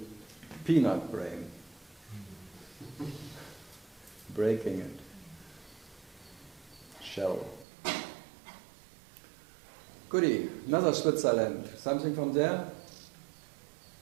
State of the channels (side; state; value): left; drops out; at 7.7 s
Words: peanut brain. Breaking it. Shell. Goody. Another Switzerland. Something from there?